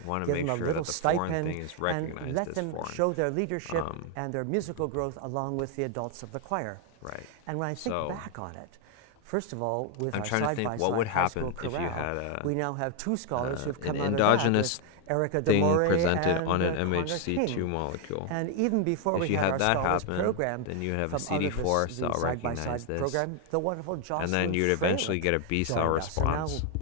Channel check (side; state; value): both; different; correlation 0.01